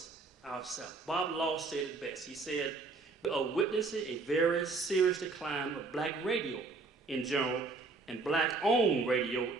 ourselves. Bob Law said it best. He said, we are witnessing a very serious decline of black radio in general and black-owned radio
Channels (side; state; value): left; quieter; 3.9 dB